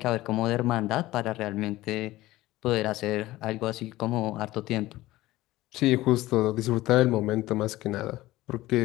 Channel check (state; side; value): quieter; right; 17.2 dB